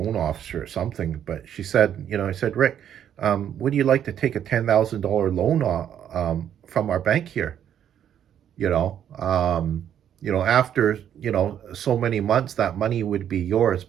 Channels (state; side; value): quieter; left; 9.8 dB